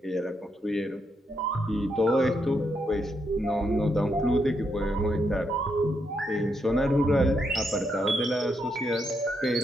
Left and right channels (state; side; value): normal; both; correlation 0.80